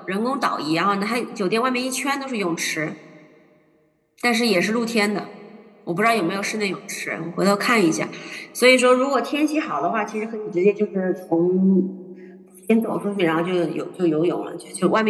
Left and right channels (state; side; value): identical; both; correlation 1.00